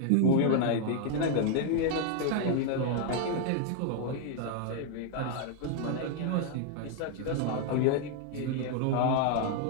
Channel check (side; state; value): both; different; correlation 0.00